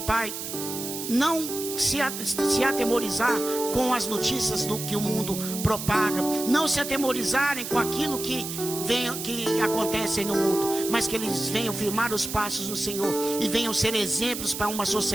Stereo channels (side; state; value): right; noise; hiss, 7 dB below the sound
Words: não se atemorizar com as notícias do que o mundo propaga, não se atemorizarem com aquilo que acontece no mundo, mas que eles venham firmar os passos no Senhor e venham ser exemplos para uma